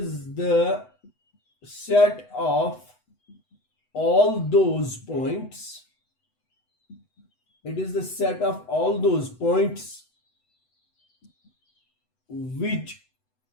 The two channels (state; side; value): late; right; 8.0 ms